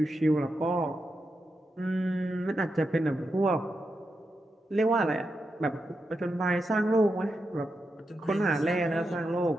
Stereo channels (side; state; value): both; normal; correlation 0.87